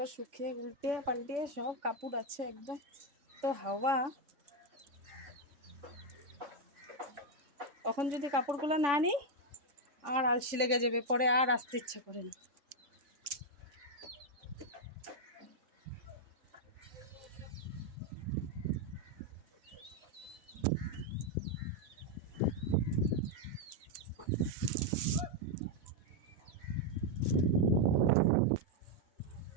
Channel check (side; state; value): left; late; 3.5 ms